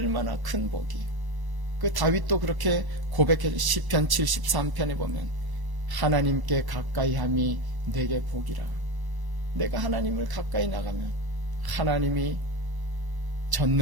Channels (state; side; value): late; left; 1.0 ms